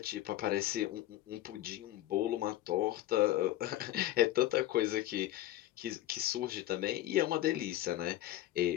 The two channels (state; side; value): quieter; right; 14.6 dB